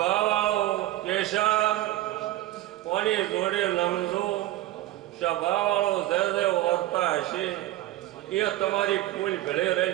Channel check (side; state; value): left; quieter; 15.4 dB